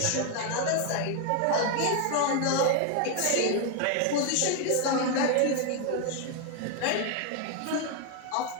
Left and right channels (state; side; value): different; both; correlation 0.01